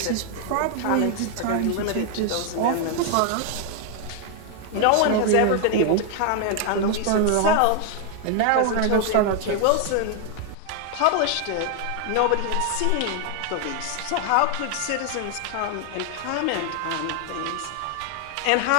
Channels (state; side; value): different; both; correlation 0.00